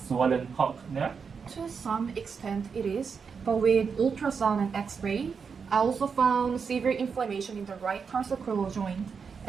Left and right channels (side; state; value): left; quieter; 5.8 dB